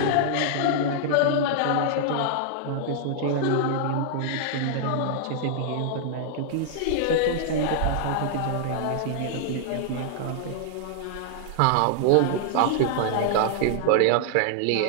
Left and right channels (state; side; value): different; both; correlation -0.01